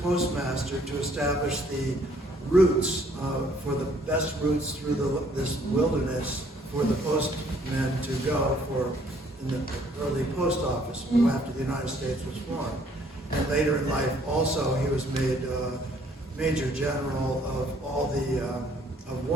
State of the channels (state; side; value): normal; both; correlation 0.62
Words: postmaster to establish the routes, for the best routes through this wilderness for the postmen to go for in the early post office after the United States was formed. And later in life also he was made Major General of all the, of